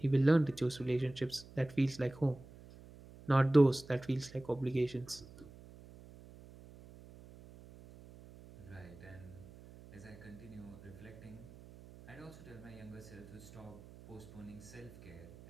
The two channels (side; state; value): right; noise; hum, 19 dB below the sound